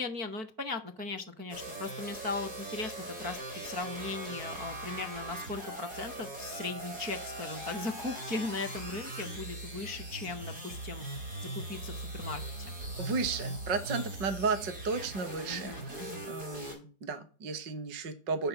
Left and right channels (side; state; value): left; late; 4.8 ms